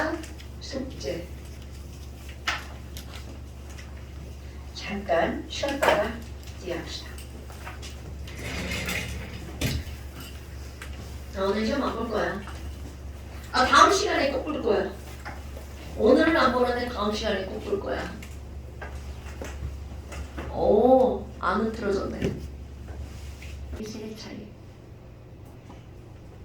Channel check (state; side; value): identical; both; correlation 1.00